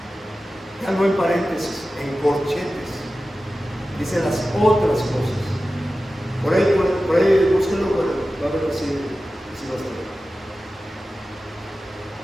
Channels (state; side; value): normal; both; correlation 0.94